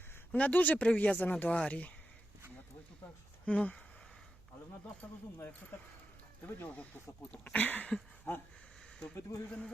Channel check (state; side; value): noise; right; hum, 25 dB below the sound